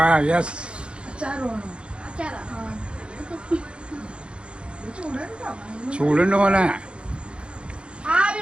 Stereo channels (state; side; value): late; left; 0.056 ms